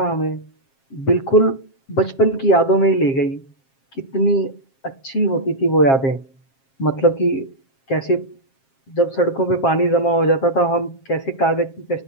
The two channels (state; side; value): late; right; 7.5 ms